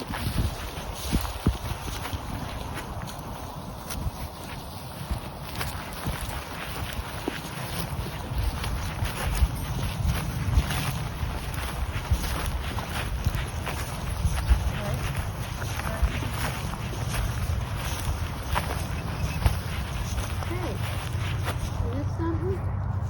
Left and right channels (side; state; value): both; identical; correlation 1.00